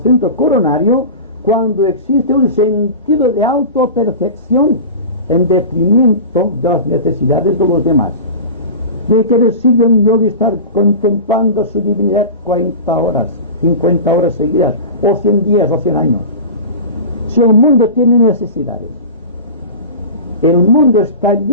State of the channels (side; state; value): both; inverted; correlation -0.31